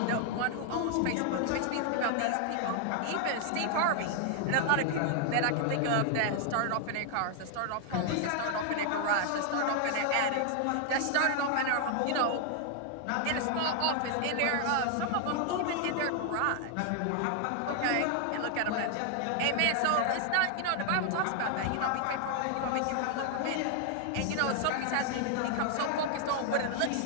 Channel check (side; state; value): both; different; correlation 0.00